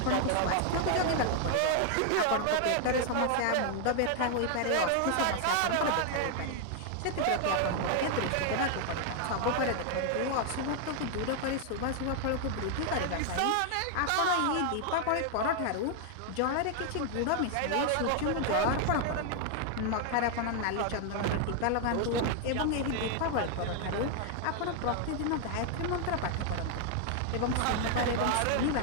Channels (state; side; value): different; both; correlation 0.00